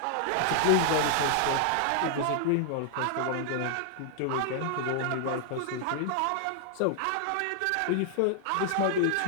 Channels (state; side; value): different; both; correlation -0.01